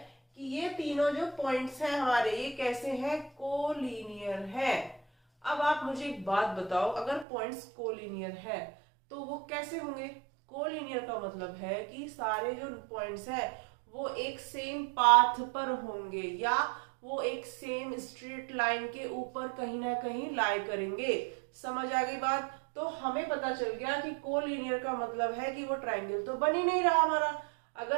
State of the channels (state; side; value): drops out; left; at 7.2 s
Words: कि ये तीनों जो पॉइंट्स हैं हमारे ये कैसे हैं, कोलिनियर है। अब आप मुझे एक बात बताओ, अगर पॉइंट्स कोलिनियर है तो वो कैसे होंगे। कोलिनियर का मतलब है कि सारे जो पॉइंट्स हैं वो एक सेम पाथ पर होंगे या वो एक सेम स्ट्रेट लाइन के ऊपर कहीं ना कहीं लाई करेंगे। समझ आ गई बात। तो हमें पता चल गया कि कोलिनियर का मतलब है कि वो ट्रायंगल तो बन ही नहीं रहा हमारा।